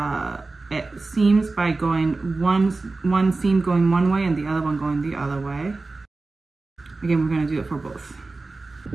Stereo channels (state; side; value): quieter; left; 3.5 dB